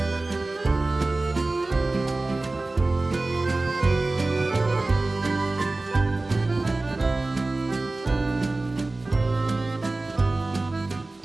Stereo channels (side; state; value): left; quieter; 3.1 dB